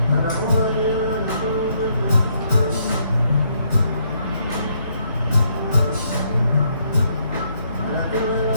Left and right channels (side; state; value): both; inverted; correlation -0.72